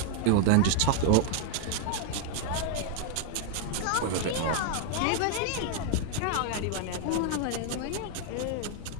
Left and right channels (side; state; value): both; different; correlation 0.00